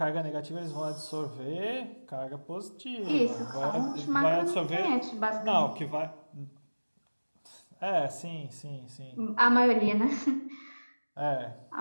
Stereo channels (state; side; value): inverted; both; correlation -1.00